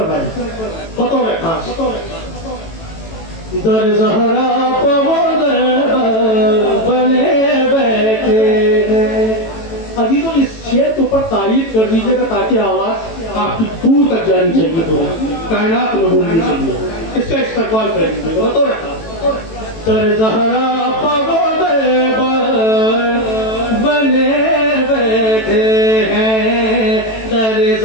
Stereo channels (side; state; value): right; late; 18 ms